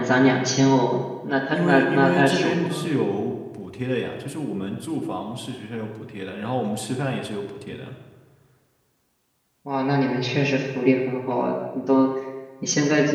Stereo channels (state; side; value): identical; both; correlation 1.00